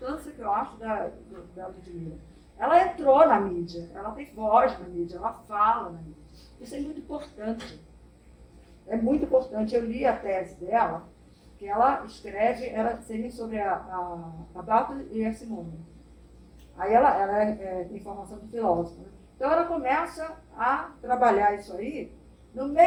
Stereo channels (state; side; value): identical; both; correlation 1.00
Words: que eu acho da Ludmilla? Ela entrou na mídia, ela tem voz na mídia, ela fala na mídia. Isso é muito importante. É muito importante. Eu li a tese dela, que ela escreve, ela seria sobre a Barthes e a Simone. Aí ela tem formação de filósofa. Né? Então ela começa a trabalhar isso aí. No